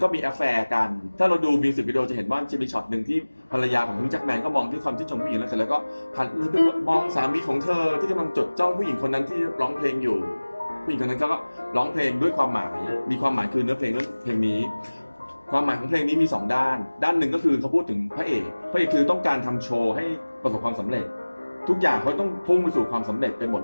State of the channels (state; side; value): inverted; both; correlation -1.00